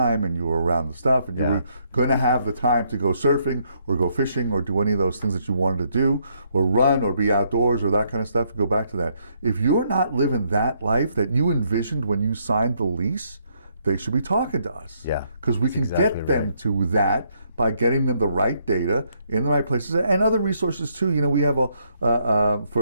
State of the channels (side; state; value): both; inverted; correlation -0.73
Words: and you were around the stuff, and you were going to have the time to go surfing or go fishing or do any of those things that you wanted to do, or run or be outdoors or that kind of stuff. Go back to that. If you're not living that life that you envisioned when you signed the lease, they should be talking to us. Yeah, because we can get them to that by getting them the right data in the right places and other resources too. You know, we have